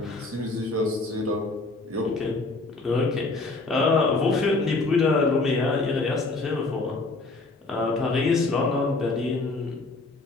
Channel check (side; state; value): right; quieter; 3.4 dB